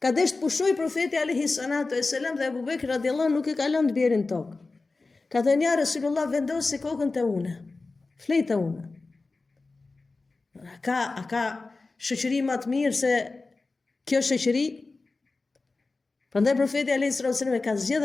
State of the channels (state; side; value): quieter; right; 3.6 dB